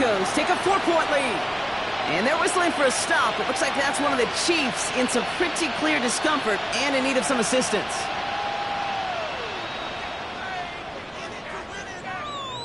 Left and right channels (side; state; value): both; identical; correlation 1.00